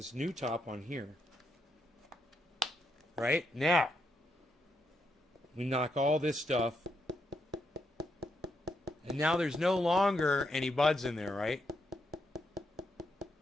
new top on here. Right? Now, we knock all this stuff. And now there's no longer any buds in there, right?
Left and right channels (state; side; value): normal; both; correlation 0.80